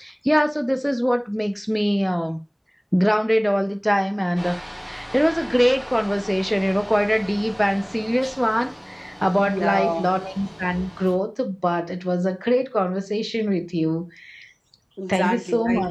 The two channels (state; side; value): identical; both; correlation 1.00